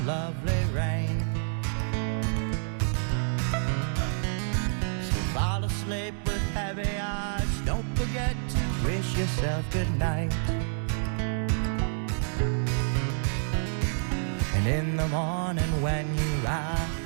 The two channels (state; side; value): silent; left; digital silence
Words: lovely rain. So fall asleep with heavy eyes, don't forget to wish yourself good night. And in the morning when you